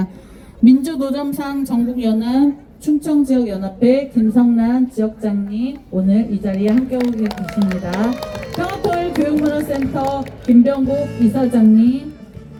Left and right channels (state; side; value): identical; both; correlation 1.00